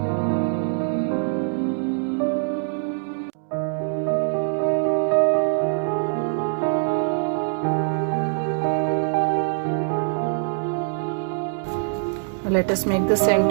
Let us make the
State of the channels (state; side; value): silent; left; digital silence